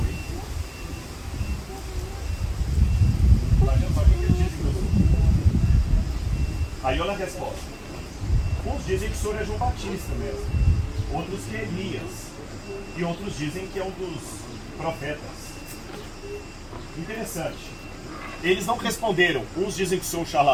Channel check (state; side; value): identical; both; correlation 1.00